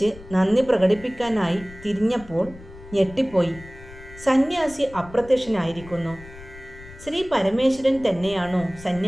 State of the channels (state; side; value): noise; left; rumble, 18 dB below the sound